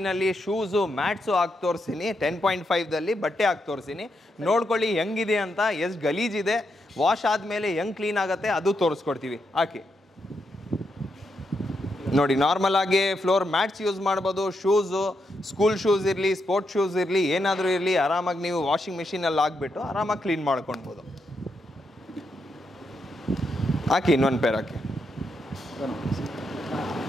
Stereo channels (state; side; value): normal; both; correlation 0.82